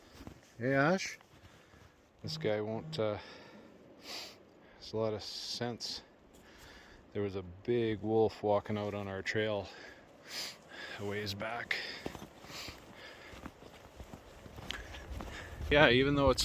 Hey Ash, this guy won't there's a lot of sense. There was a big wolf walking out on our trail a ways back. Yeah, even though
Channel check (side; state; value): both; identical; correlation 1.00